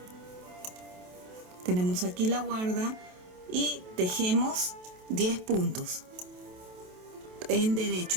tenemos aquí la guarda y tejemos 10 puntos en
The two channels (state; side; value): late; left; 27 ms